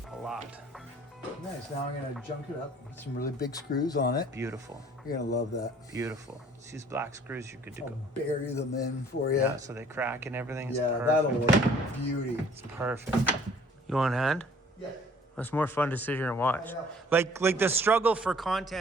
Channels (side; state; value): both; normal; correlation 0.55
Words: a lot. Nice. Now I'm gonna junk it up. Put some really big screws on it. Beautiful. You're gonna love that. Beautiful. Just use black screws, you're good to I'll go. bury them in for you. Yeah, so they crack and everything. It's Yeah, perfect. that'll look beauty. It's perfect. You want a hand? Yeah, That's more fun to sit here and watch. I know. Like the struggle for